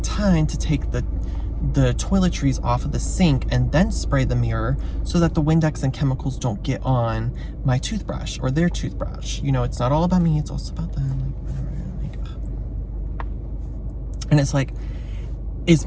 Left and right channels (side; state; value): both; identical; correlation 1.00